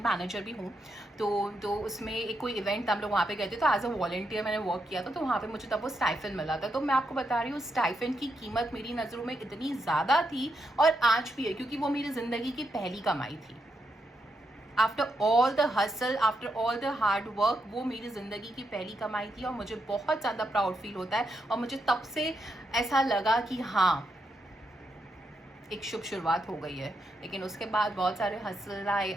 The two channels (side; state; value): both; normal; correlation 0.82